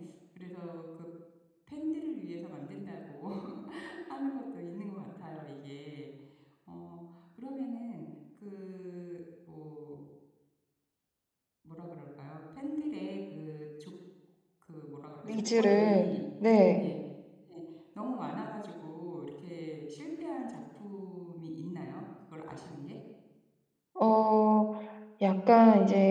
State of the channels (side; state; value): both; identical; correlation 1.00